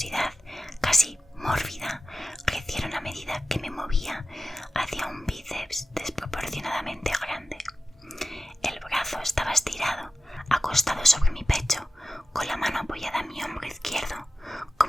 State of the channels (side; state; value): both; normal; correlation 0.91